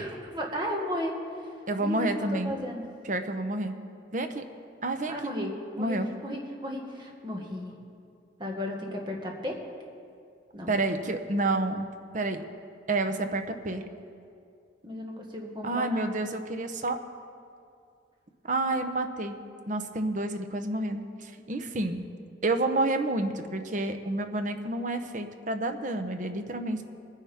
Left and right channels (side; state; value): both; normal; correlation 0.27